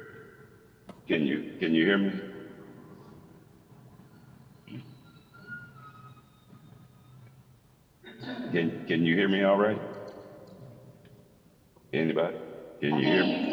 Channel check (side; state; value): both; identical; correlation 1.00